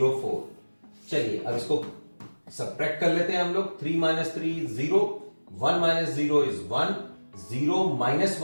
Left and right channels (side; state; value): both; inverted; correlation -1.00